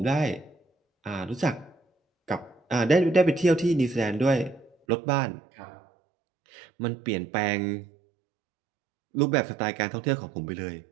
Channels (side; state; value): left; drops out; at 4.8 s